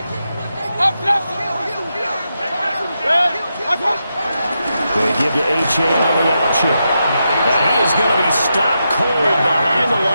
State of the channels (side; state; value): both; inverted; correlation -0.86